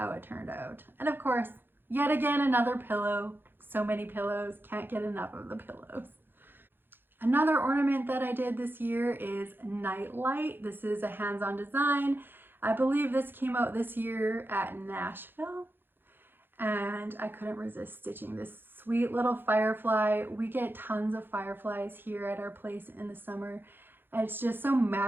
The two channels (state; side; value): late; left; 0.10 ms